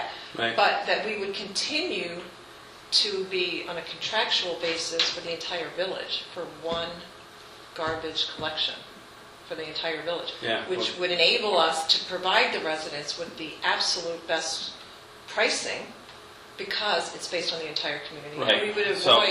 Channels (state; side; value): identical; both; correlation 1.00